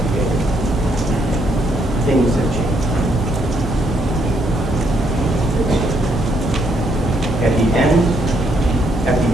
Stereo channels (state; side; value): normal; both; correlation 0.73